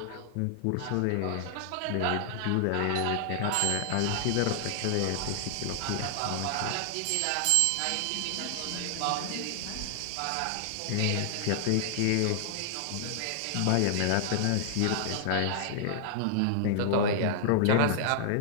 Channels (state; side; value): different; both; correlation -0.01